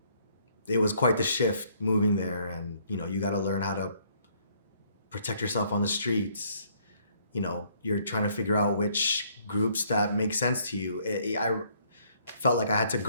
It was quite the shift moving there, and you got to learn how to protect yourself on the streets. You're trying to figure out which groups that make sense to you. I felt like I had to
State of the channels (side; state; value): both; inverted; correlation -0.65